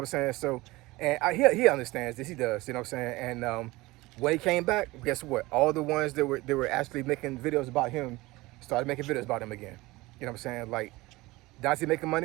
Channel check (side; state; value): left; quieter; 20.6 dB